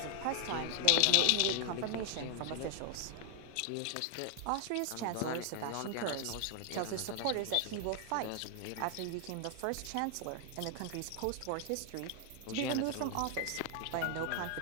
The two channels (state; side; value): different; both; correlation 0.00